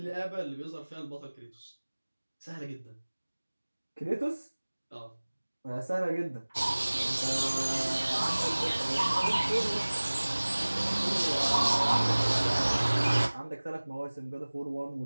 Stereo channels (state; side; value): inverted; both; correlation -1.00